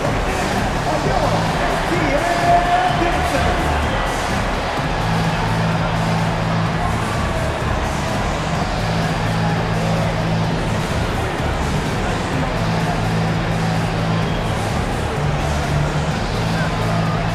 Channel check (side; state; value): both; identical; correlation 1.00